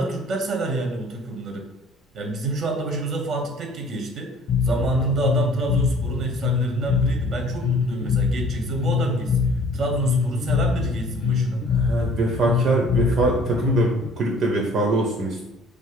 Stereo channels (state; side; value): normal; both; correlation 0.52